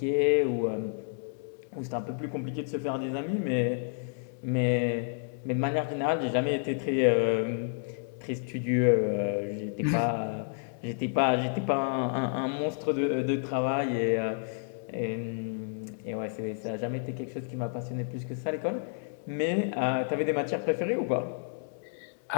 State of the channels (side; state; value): right; silent; digital silence